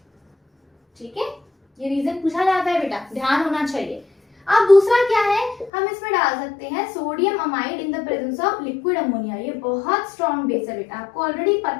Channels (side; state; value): right; drops out; at 5.7 s